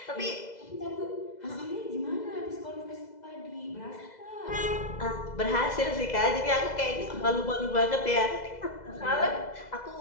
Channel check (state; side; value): late; right; 2.0 ms